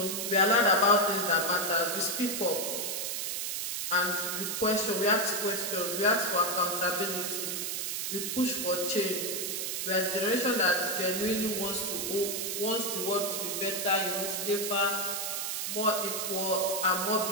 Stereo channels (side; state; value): right; noise; hiss, 2 dB below the sound